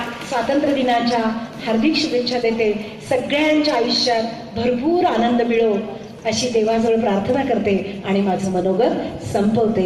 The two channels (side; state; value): both; identical; correlation 1.00